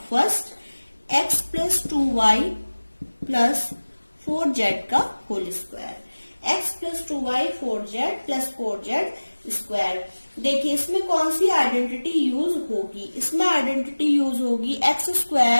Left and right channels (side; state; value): both; inverted; correlation -1.00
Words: first X plus 2y plus 4z का whole square, X plus 2y 4z plus 4z square. देखिए इसमें कौन सी आइडेंटिटी यूज होगी, इसमें आइडेंटिटी यूज होगी एक्स